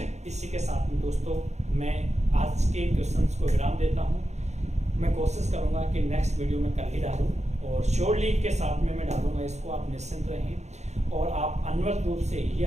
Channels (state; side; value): late; left; 0.33 ms